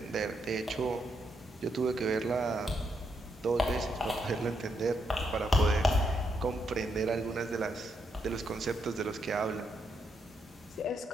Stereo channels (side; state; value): both; normal; correlation 0.79